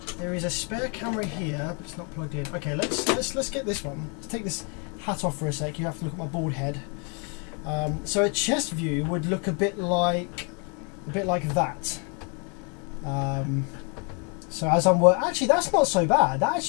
There is a spare camera here, but it's not plugged in. Okay, let's get this one. Let's take this hat off for a sec. You have to look at my bald head. So a chest view would look a bit like that. So as I'm actually, that's not so bad. That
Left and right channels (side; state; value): right; quieter; 36.4 dB